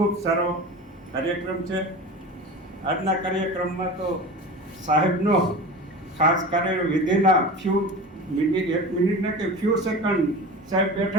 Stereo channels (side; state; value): both; normal; correlation 0.32